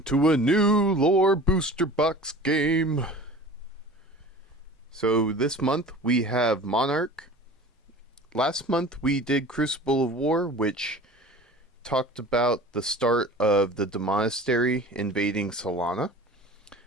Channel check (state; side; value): normal; both; correlation 0.40